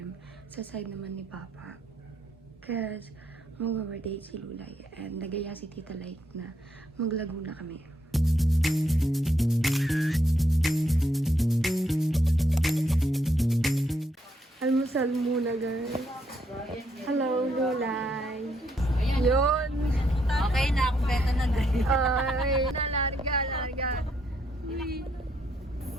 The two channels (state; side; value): normal; both; correlation 0.75